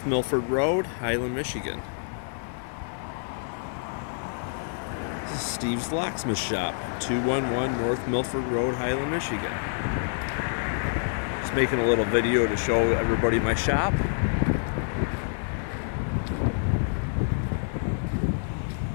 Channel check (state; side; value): silent; right; digital silence